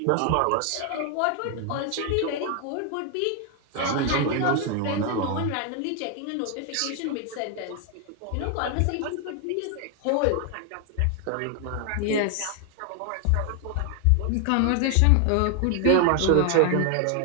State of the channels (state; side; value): different; both; correlation 0.00